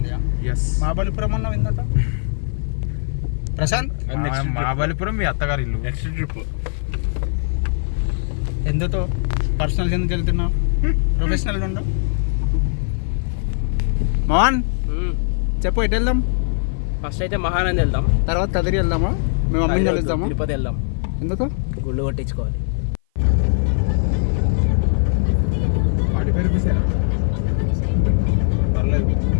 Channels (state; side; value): silent; right; 57 dB below the other